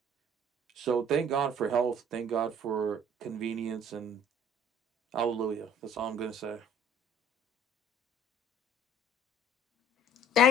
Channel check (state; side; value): normal; both; correlation 0.53